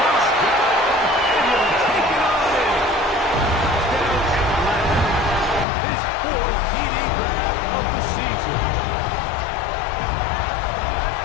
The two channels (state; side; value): drops out; right; at 5.7 s